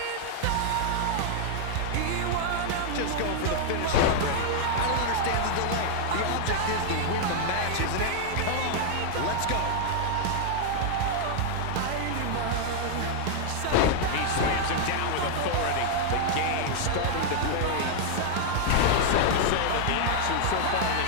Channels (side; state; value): both; different; correlation 0.00